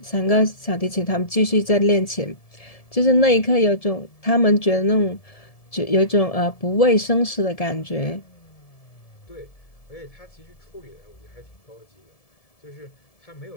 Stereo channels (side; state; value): right; late; 1.7 ms